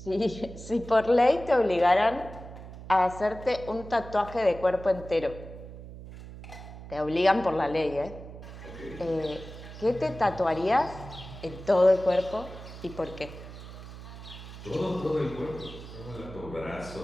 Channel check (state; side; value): noise; right; hum, 14 dB below the sound